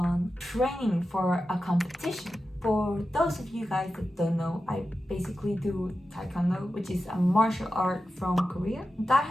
training for a competition For those of you guys that don't know, I basically do Taekwondo, which is a martial art from Korea. That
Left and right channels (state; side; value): normal; both; correlation 0.92